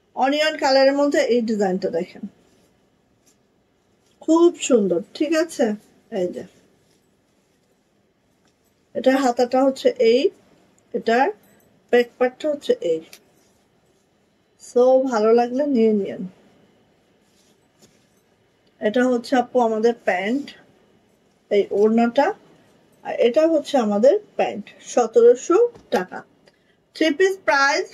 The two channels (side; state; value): both; identical; correlation 1.00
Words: অনিয়ন কালারের মধ্যে এই ডিজাইনটা দেখেন, খুব সুন্দর। ঠিক আছে, এই যে এটার হাতাটা হচ্ছে এই, এটার ব্যাক পার্টটা হচ্ছে এই। সো ভালো লাগলে নিয়ে নিন। এটা হচ্ছে আপু আমাদের প্যান্ট, এই ওড়নাটা, আর এটা হচ্ছে আমাদের প্যান্ট। 1700 টাকা, থ্রি পিস প্রাইস